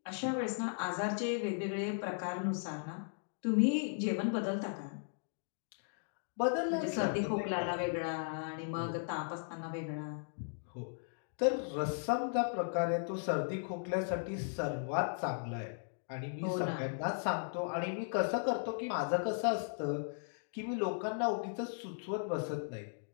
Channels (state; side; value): silent; right; digital silence